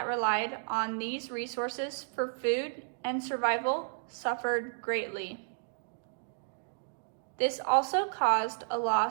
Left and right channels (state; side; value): silent; left; digital silence